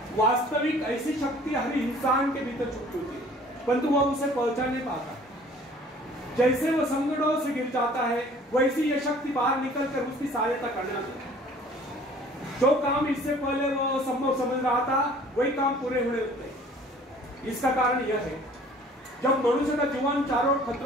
वास्तविक ऐसी शक्ति हर इंसान के भीतर छुपी होती है, परंतु वह उसे पहचान नहीं पाता। जैसे वह संकटों से गिर जाता है, वैसी यह शक्ति बाहर निकलकर उसकी सहायता करने लगती है। जो काम इससे पहले वह संभव समझ रहा था, वही काम पूरे होने लगते हैं। इसका कारण यह है, जब मनुष्य का जीवन चारों ओर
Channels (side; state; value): both; normal; correlation 0.51